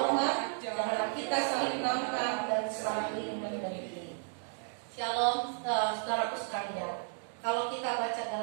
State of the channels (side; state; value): left; silent; 55 dB below the other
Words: janganlah kita saling menantang dan saling mendengki. Shalom, saudaraku sekalian. Kalau kita baca